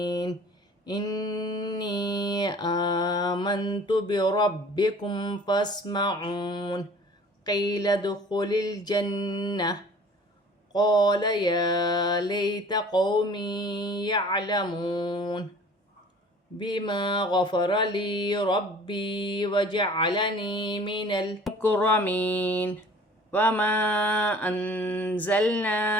إني آمنت بربكم فاسمعون قيل ادخل الجنة قال يا ليت قومي يعلمون بما غفر لي ربي وجعلني من المكرمين وما أنزلنا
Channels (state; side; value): normal; both; correlation 0.48